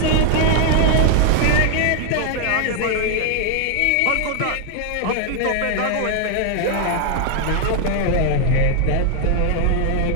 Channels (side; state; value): both; different; correlation 0.00